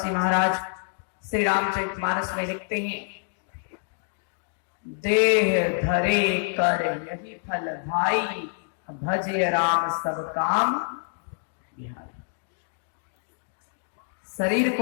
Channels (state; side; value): silent; right; digital silence